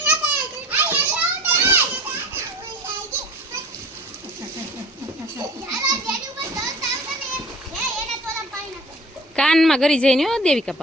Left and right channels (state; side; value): normal; both; correlation 0.43